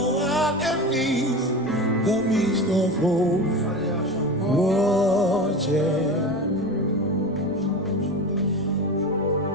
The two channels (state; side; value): noise; right; rumble, 27 dB below the sound